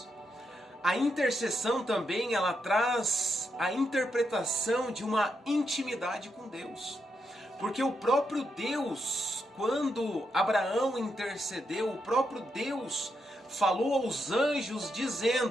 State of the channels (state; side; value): normal; both; correlation 0.82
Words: A intercessão também ela traz a interpretação de uma intimidade com Deus. Porque o próprio Deus, quando Abraão intercedeu, o próprio Deus falou aos anjos